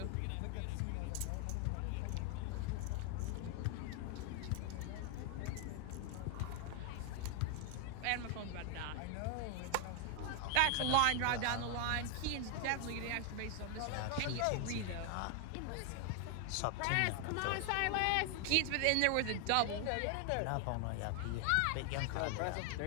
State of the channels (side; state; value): both; different; correlation 0.00